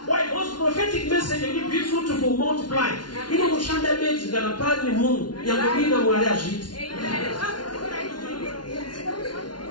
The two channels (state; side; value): late; right; 0.70 ms